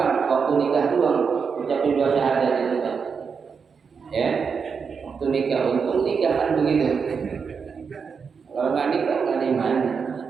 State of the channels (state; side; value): quieter; left; 5.9 dB